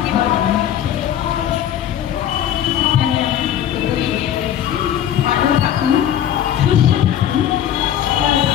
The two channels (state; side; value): quieter; right; 10.6 dB